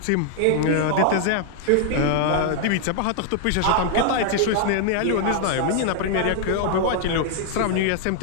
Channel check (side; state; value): both; different; correlation 0.00